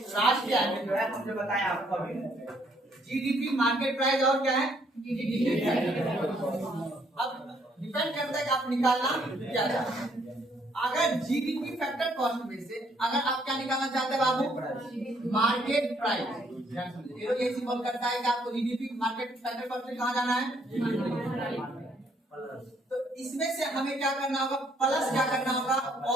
में जो है हमने बताया आपको अभी जीडीपी, मार्केट प्राइस और क्या है जीडीपी। अब डिपेंड करता है कि आप निकालना क्या चाहते हैं। अगर जीडीपी फैक्टर कॉस्ट में से अगर आप क्या निकालना चाहते हैं बाबू, मार्केट प्राइस, तो ये सिंबल करता है कि आपको जीडीपी मार्केट फैक्टर कॉस्ट में कहाँ जाना है। तो इसमें से हमें क्या करना होगा, प्लस क्या करना होगा,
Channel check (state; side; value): normal; both; correlation 0.68